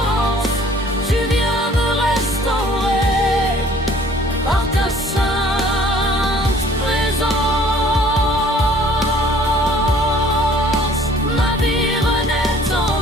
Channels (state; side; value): normal; both; correlation 0.54